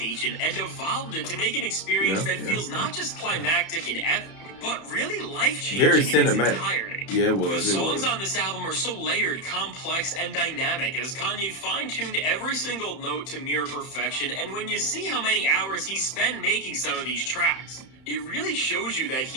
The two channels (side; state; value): right; late; 31 ms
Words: and evolved it to make an experience that feels not just climactic and epic, but really life-changing. Very in its cinematic. entirety. Yeah, it was. The It songs was. on this album are so layered, complex, and dynamic as Kanye fine-tuned every single note to near perfection, and when you see how many hours he spent making some of these tracks, it really shows you that